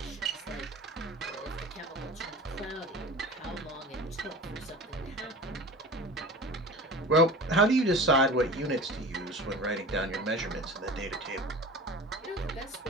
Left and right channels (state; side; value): normal; both; correlation 0.36